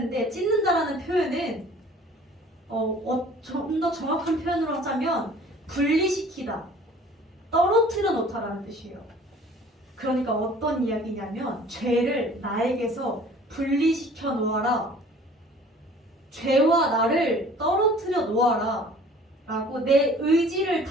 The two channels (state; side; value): normal; both; correlation 0.50